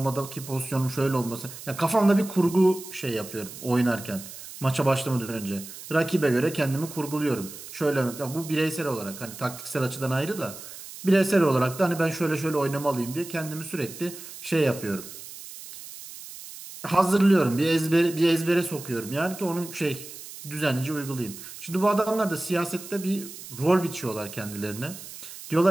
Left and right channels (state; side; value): noise; right; hiss, 14 dB below the sound